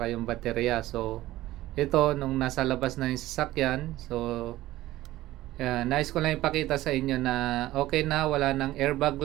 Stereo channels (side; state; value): left; quieter; 16.1 dB